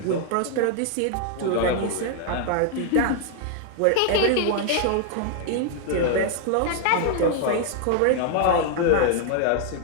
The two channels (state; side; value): different; both; correlation 0.00